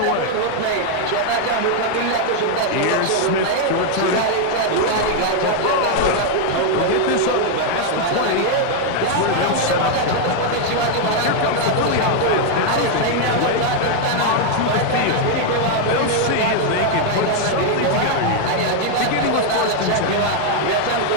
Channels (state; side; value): different; both; correlation 0.00